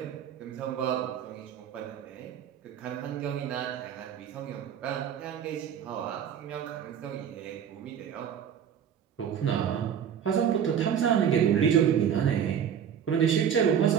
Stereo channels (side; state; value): left; quieter; 8.5 dB